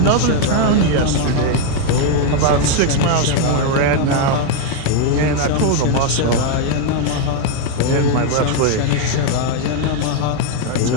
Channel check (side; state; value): both; different; correlation 0.01